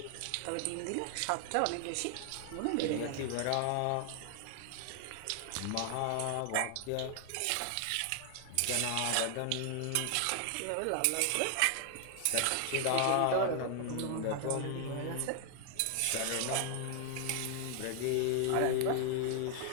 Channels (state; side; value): different; both; correlation 0.00